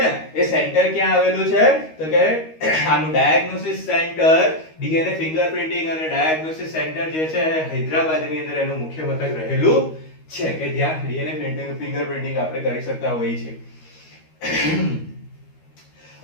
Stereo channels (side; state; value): right; late; 13 ms